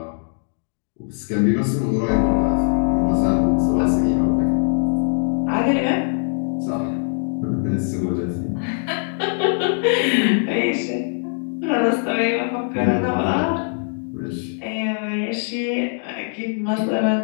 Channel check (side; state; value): right; silent; 65 dB below the other